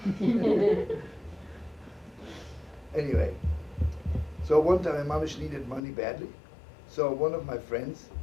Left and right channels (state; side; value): drops out; right; at 5.8 s